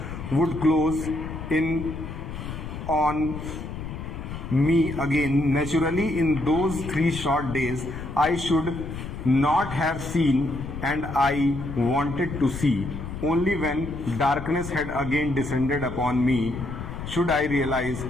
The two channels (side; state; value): left; noise; rumble, 8 dB below the sound